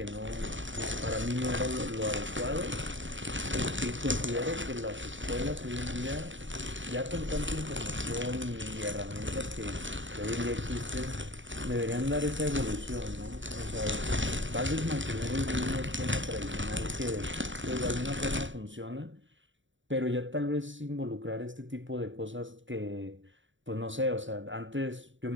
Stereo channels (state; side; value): late; left; 0.55 ms